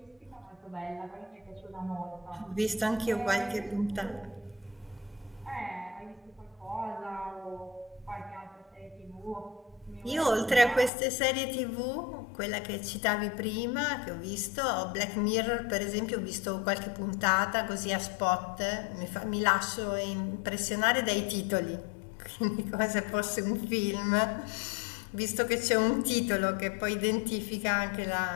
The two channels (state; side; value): drops out; right; at 10.9 s